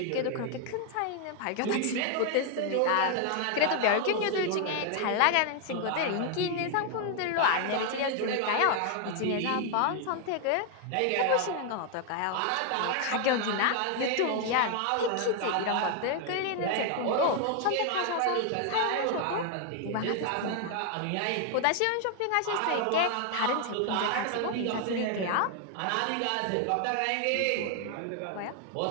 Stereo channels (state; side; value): different; both; correlation 0.00